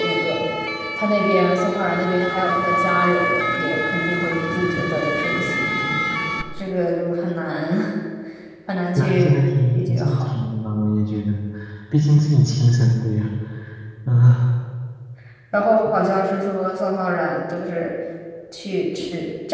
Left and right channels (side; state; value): both; identical; correlation 1.00